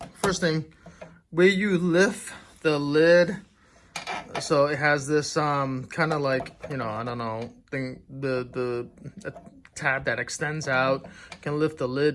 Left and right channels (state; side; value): identical; both; correlation 1.00